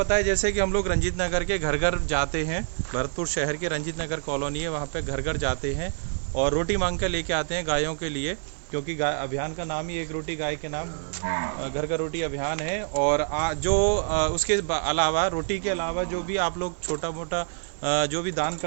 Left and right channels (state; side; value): silent; left; 60 dB below the other